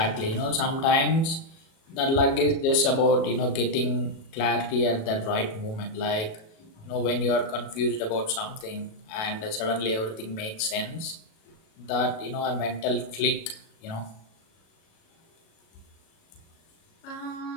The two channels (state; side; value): late; right; 37 ms